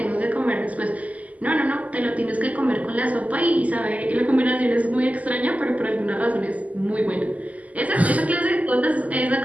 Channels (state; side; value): late; left; 0.074 ms